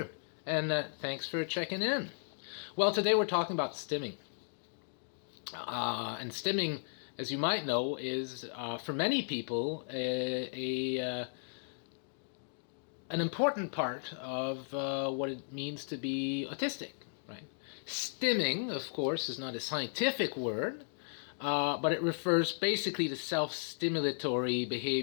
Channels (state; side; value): silent; right; digital silence